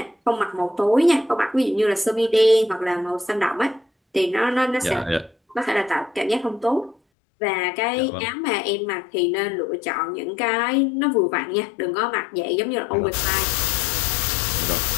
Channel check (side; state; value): right; drops out; at 7.0 s